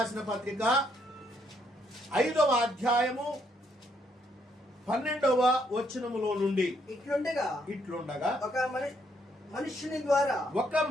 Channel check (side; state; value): both; normal; correlation 0.72